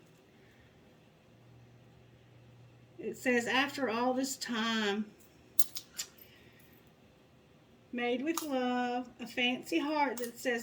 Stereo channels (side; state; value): both; identical; correlation 1.00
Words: It says, after all this time, made with love, a fancy heart that